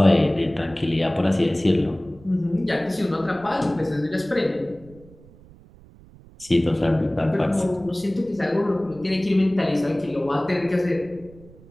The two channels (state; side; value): noise; right; rumble, 23 dB below the sound